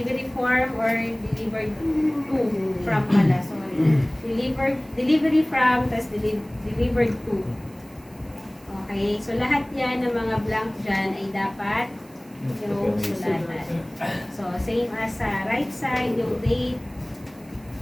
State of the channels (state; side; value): noise; right; hiss, 28 dB below the sound